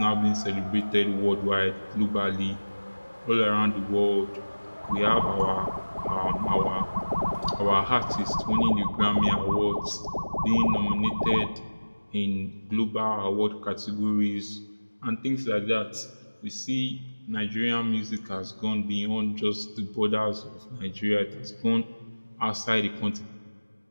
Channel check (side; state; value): both; inverted; correlation -1.00